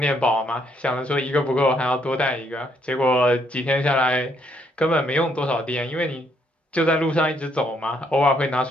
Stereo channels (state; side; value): normal; both; correlation 0.71